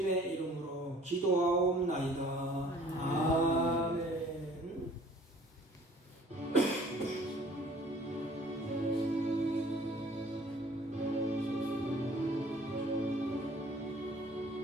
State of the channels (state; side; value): normal; both; correlation 0.53